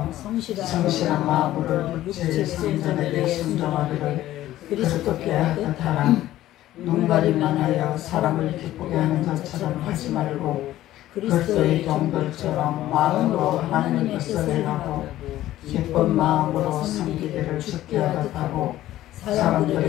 성실한 마음으로 육체의 성전에게 순종하기를 그리스도께 하듯 하라. 눈가림만 하여 사람을 기쁘게 하는 것처럼 하지 말고 그리스도의 종들처럼 마음으로 하나님의 뜻을 행하고 기쁜 마음으로 섬기기를 주께 하듯 하고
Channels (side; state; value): right; quieter; 14.3 dB